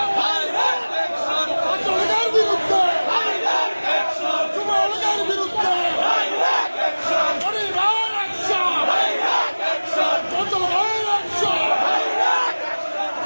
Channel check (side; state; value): both; inverted; correlation -1.00